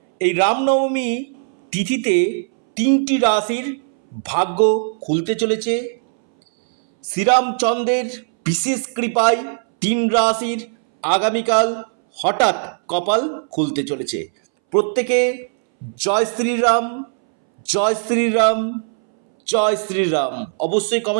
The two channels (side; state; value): left; silent; 65 dB below the other